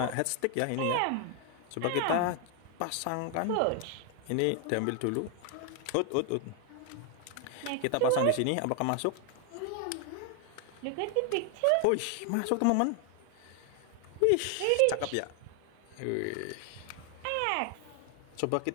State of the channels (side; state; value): both; different; correlation 0.00